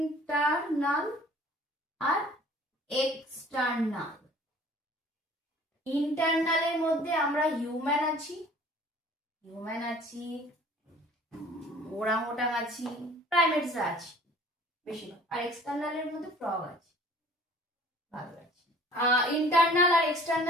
আর এক্সটার্নাল। ইন্টারনালের মধ্যে আমরা হিউম্যান আছি, ওরাংওটাং আছি, প্রাইমেটসরা আছে বেশিরভাগ। আর এক্সটার্নালের মধ্যে ফ্রগ আছে, ভালো আছে। ইন্টারনাল আর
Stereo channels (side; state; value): both; normal; correlation 0.50